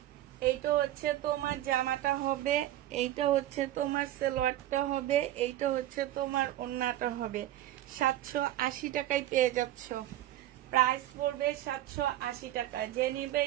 এইটা হচ্ছে তোমার জামাটা হবে, এইটা হচ্ছে তোমার সালোয়ারটা হবে, এইটা হচ্ছে তোমার ওড়নাটা হবে। 780 টাকায় পেয়ে যাচ্ছ। প্রাইস পড়বে 780 টাকা। যে নিবে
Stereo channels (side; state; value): left; quieter; 13.8 dB